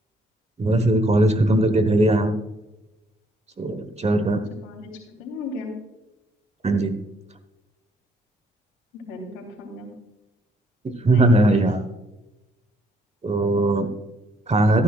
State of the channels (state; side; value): normal; both; correlation 0.68